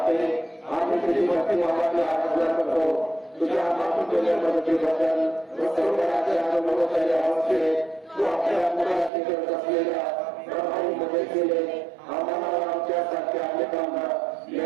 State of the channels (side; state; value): left; drops out; at 9.1 s